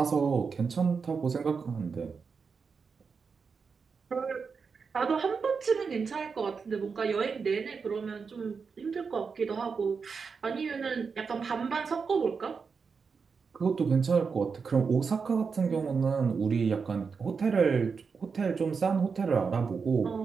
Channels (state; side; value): quieter; left; 5.4 dB